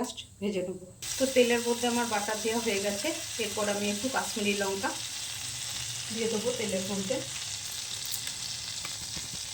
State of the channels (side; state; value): both; identical; correlation 1.00